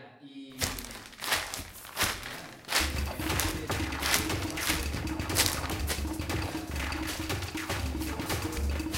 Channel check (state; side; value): identical; both; correlation 1.00